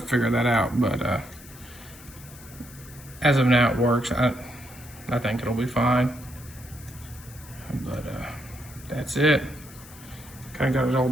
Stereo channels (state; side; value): noise; left; hiss, 19 dB below the sound